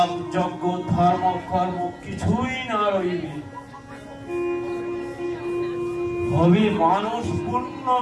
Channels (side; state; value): both; identical; correlation 1.00